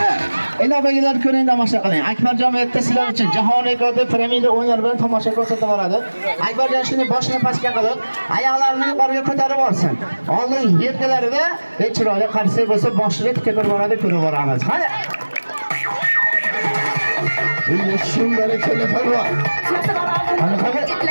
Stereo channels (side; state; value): both; inverted; correlation -1.00